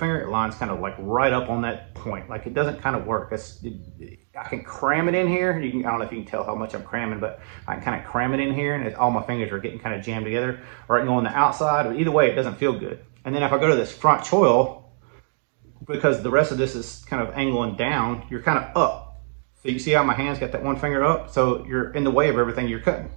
it lines kind of like right up on that point. Like it doesn't kind of work. I can cram it in here. I don't know if you can tell how much I'm cramming, but I can kind of cram it in here, and all my fingers are getting kind of jammed together, or I can go on the outside, but either way, it doesn't feel good. And then if I go to this front choil, because the rest of this is kind of angling down, you're kind of up. So you see how my hand's got that 1 finger up? So you're in the way of everything you're cutting.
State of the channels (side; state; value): left; silent; digital silence